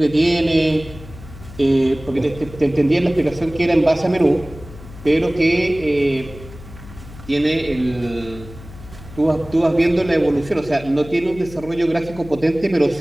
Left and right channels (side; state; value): left; noise; hum, 17 dB below the sound